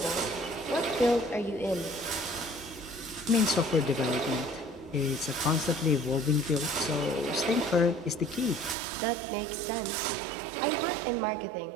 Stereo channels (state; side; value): drops out; left; at 8.8 s